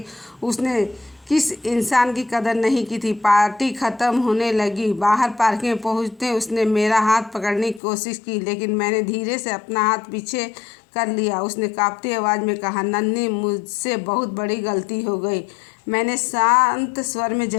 उसने किस इंसान की कदर नहीं की थी। पार्टी ख़त्म होने लगी। बाहर पार्किंग में पहुंचते उसने मेरा हाथ पकड़ने की कोशिश की, लेकिन मैंने धीरे से अपना हाथ पीछे कर लिया। उसने कांपती आवाज़ में कहा, नन्ही, मुझसे बहुत बड़ी गलती हो गई। मैंने शांत स्वर में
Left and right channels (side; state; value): right; drops out; at 7.8 s